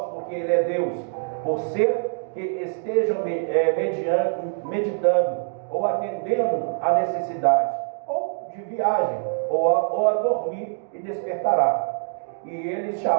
porque ele é Deus, por ser que estejam meditando, ou atendendo a necessidade, ou de viagem, ou a dormir, e despertará. E eles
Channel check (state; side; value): silent; left; digital silence